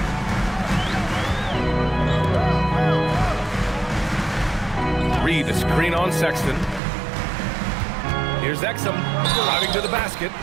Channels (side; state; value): left; drops out; at 6.8 s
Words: Reed, a screen on Sexton. Here's Exum driving to the basket,